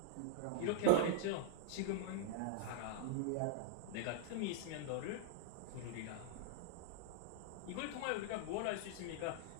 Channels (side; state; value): both; different; correlation -0.01